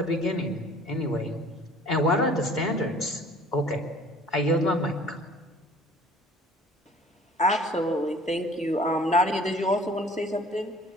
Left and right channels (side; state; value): both; normal; correlation 0.50